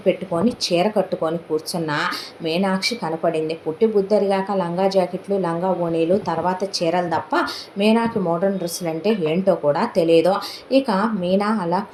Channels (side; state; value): both; identical; correlation 1.00